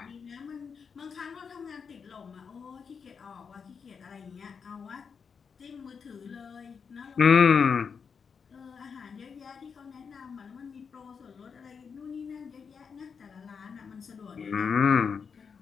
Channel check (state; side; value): quieter; right; 6.1 dB